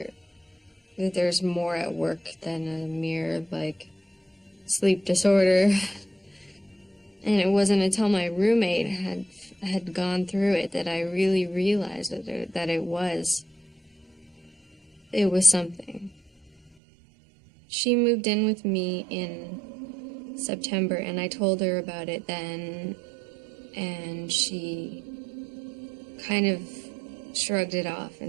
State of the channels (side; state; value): left; drops out; at 16.7 s